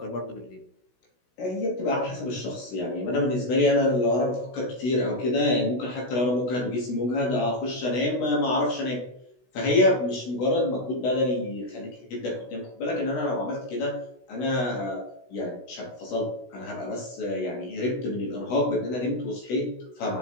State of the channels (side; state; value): right; late; 16 ms